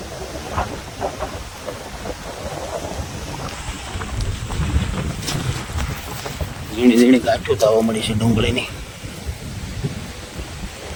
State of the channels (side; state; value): both; identical; correlation 1.00